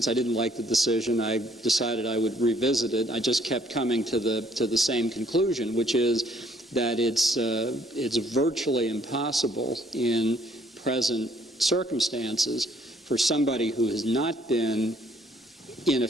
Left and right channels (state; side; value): normal; both; correlation 0.63